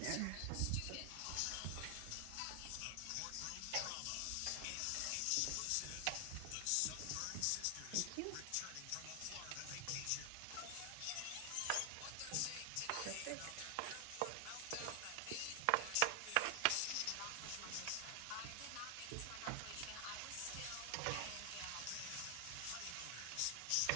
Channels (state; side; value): different; both; correlation 0.00